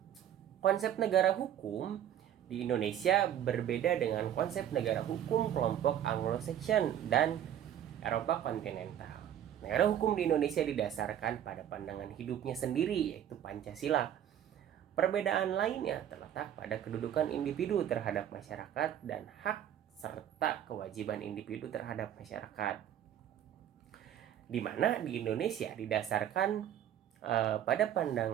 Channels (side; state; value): left; quieter; 10.5 dB